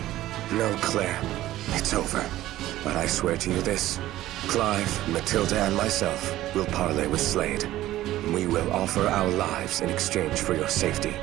No, Claire. It's over. But I swear to you this. Clive, Matilda, and myself will parley with Slade. We will offer our lives in exchange for your safety.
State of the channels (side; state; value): left; quieter; 14.9 dB